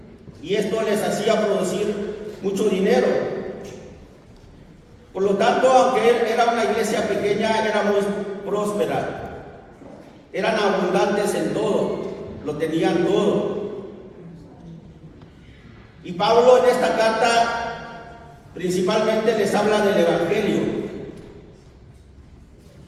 y esto les hacía producir mucho dinero. Por lo tanto, aunque era una iglesia pequeña, era muy próspera. Eran abundantes en todo, lo tenían todo. Y Pablo en esta carta principalmente les habla del Evangelio.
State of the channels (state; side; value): identical; both; correlation 1.00